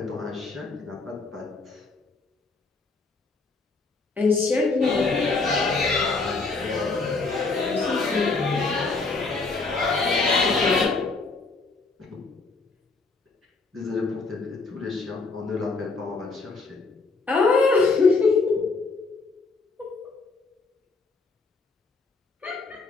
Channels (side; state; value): right; quieter; 3.9 dB